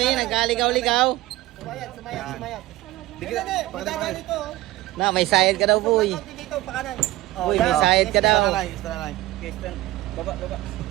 nagkaligaw-ligaw. Na, may sayad ka daw, boy. Boy, may sayad ka daw. Baba.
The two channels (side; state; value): left; quieter; 17.5 dB